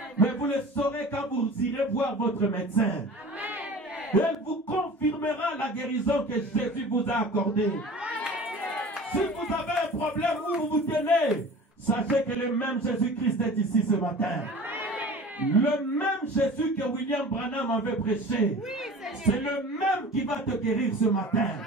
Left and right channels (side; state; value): both; normal; correlation 0.40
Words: Mais vous le saurez quand vous irez voir votre médecin. Elle vous confirmera la guérison que Jésus vous a accordée. Si vous avez un problème où vous vous tenez, sachez que le même Jésus-Christ est ici ce matin. Le même Jésus que William Branham avait prêché, c'est le même qui va te guérir ce matin.